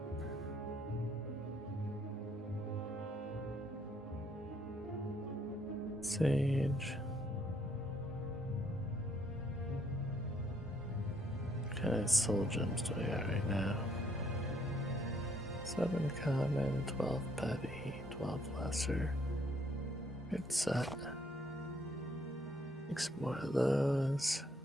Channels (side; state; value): both; normal; correlation 0.68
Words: Sage. What kind of soul gems do I got right now? 7 common, 12 petty, 12 lesser. Good set. Make some more of those.